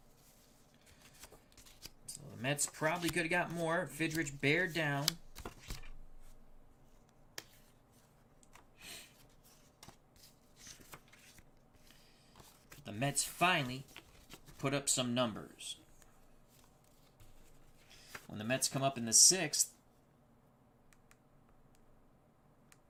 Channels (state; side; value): identical; both; correlation 1.00